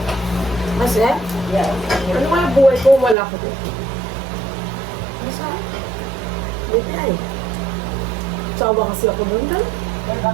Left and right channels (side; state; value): left; drops out; at 3.2 s